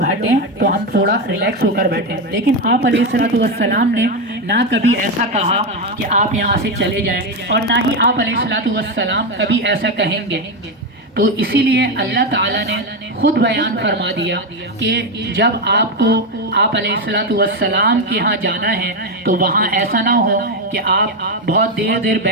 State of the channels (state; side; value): normal; both; correlation 0.10